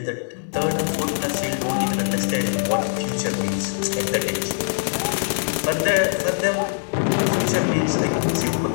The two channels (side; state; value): right; silent; digital silence